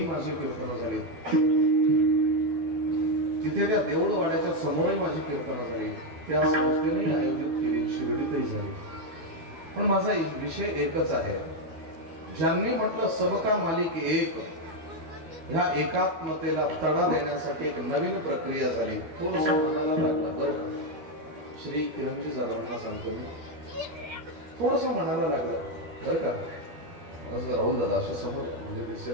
माझी कीर्तनं झाली. तिथे त्या देऊळवाड्याच्या समोरही माझी कीर्तनं झाली. त्या संस्थेने आयोजित केली, शिर्डीतही झाली. पण माझा विषय एकच आहे, ज्यांनी म्हटलं सबका मालिक एक, ह्या एकात्मतेला तडा देण्यासाठी एक नवीन प्रक्रिया झाली. थोडस मनाला लागलं बरं का, श्री किरणजी जाधवांना सांगतो मी, थोडस मनाला लागलं बरं का. राहुल दादा अशा समोर म्हणजे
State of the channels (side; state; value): left; late; 12 ms